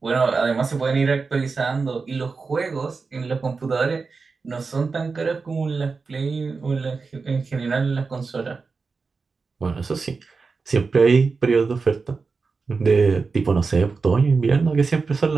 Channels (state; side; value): quieter; left; 4.5 dB